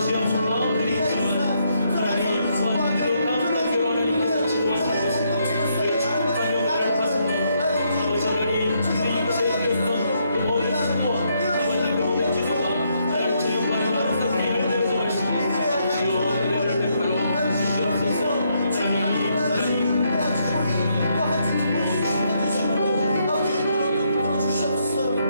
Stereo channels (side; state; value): both; inverted; correlation -0.75